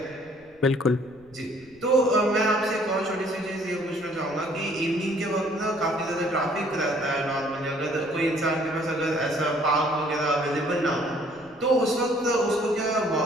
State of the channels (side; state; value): right; noise; rumble, 30 dB below the sound